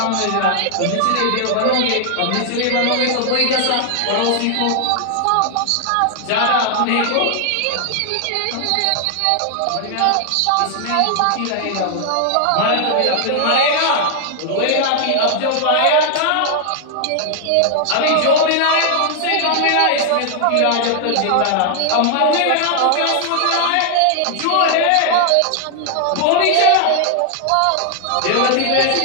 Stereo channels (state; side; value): different; both; correlation 0.00